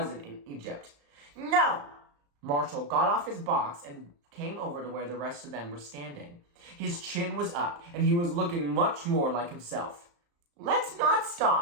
in Egypt. No! Marshall got off his box and came over to where the rest of them were standing. His chin was up, and he was looking much more like himself. Let's not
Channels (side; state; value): left; late; 35 ms